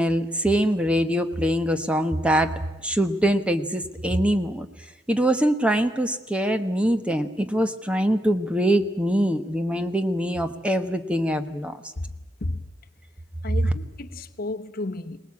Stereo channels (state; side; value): normal; both; correlation 0.81